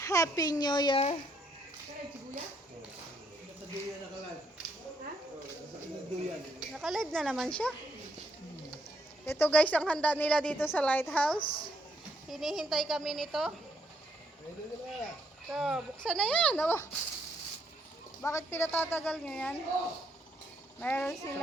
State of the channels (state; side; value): normal; both; correlation 0.73